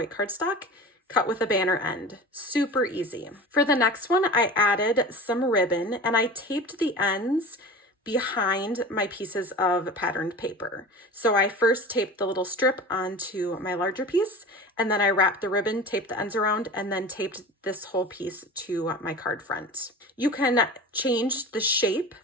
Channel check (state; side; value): normal; both; correlation 0.35